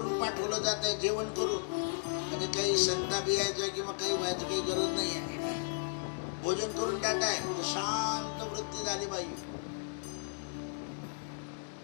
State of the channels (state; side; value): silent; right; digital silence